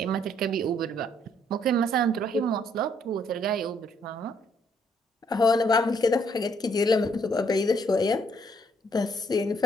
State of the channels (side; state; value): both; normal; correlation 0.69